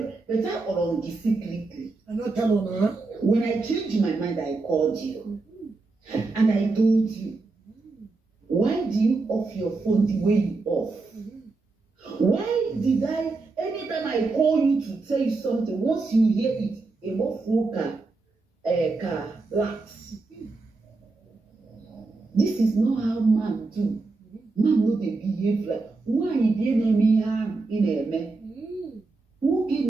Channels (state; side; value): quieter; left; 3.7 dB